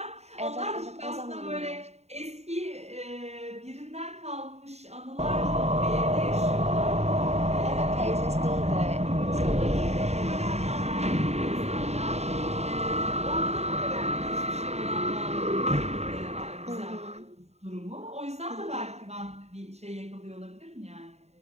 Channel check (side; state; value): left; late; 0.31 ms